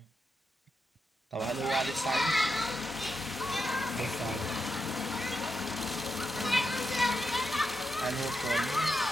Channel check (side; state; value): both; normal; correlation 0.86